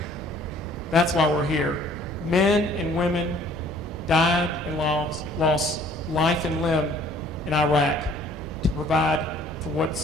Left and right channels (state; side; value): normal; both; correlation 0.56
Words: That's why we're here. Men and women died and lost life and limb in Iraq to provide for